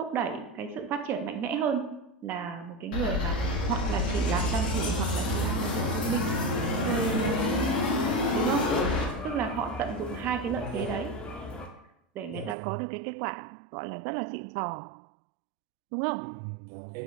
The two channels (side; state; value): left; drops out; at 12.6 s